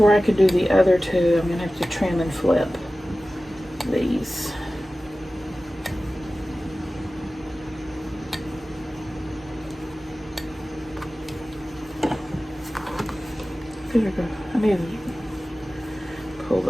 I could do the other two, I'm going to have to trim and flip these. I need to pull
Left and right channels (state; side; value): normal; both; correlation 0.96